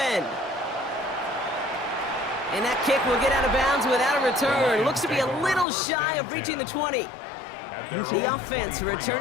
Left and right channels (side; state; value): right; drops out; at 5.7 s